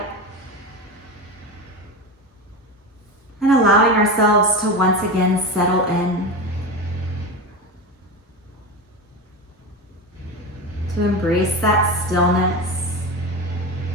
And allowing ourselves to once again settle in. To embrace that stillness.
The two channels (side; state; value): both; normal; correlation 0.22